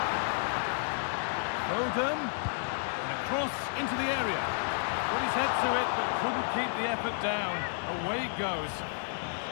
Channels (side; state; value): right; silent; digital silence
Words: Foden. Cross into the area. Put his head to it, but couldn't keep the effort down. Away it goes.